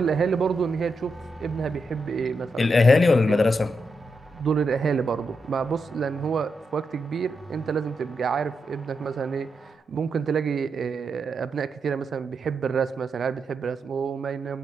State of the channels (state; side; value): normal; both; correlation 0.85